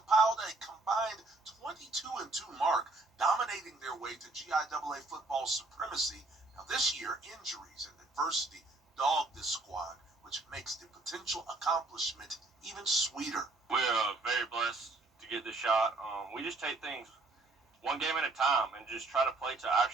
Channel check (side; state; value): left; quieter; 3.2 dB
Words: a combined 22-2 mark, dominating their way to GIAA football supremacy. Now this year, injuries and adversity dogged this squad, which makes the potential accomplishment even sweeter. We're very blessed to get this shot. We just take things one game at a time and just try to play to our